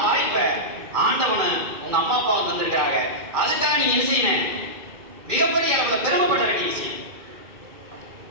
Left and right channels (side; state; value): left; late; 2.4 ms